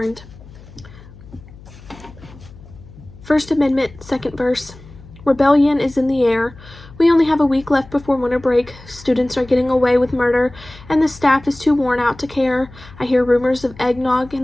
First Amendment, second verse. Rebellion is in the air. We only have a week left before winter break. Students are getting away with murder, and the staff is too worn out to care. I hear rumors of eggnog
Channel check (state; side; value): noise; left; hum, 20 dB below the sound